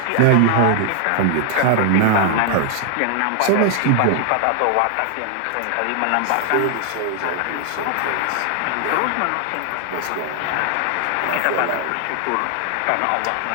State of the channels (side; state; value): both; different; correlation 0.00